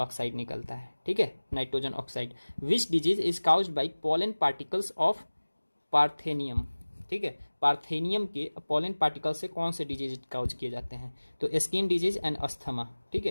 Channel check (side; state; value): both; inverted; correlation -1.00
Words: निकलता है, ठीक है, nitrogen oxide. Which disease is caused bye pollen particles of parthenium, ठीक है, पार्थेनियम के पोलन पार्टिकल से कौन से डिजीज काउज किए जाते हैं, तो स्किन डिजीज एंड अस्थमा, ठीक